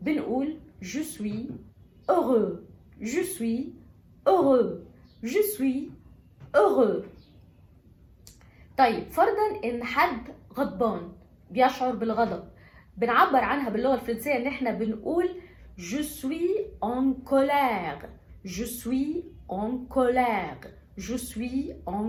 بنقول je suis heureux. je suis heureux. je suis heureux. طيب فرضا ان حد غضبان بيشعر بالغضب، بنعبر عنها باللغة الفرنسية ان احنا بنقول je suis en colère. je suis en colère. je suis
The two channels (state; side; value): identical; both; correlation 1.00